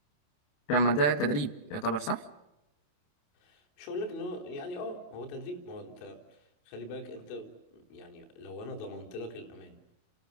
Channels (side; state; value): right; late; 28 ms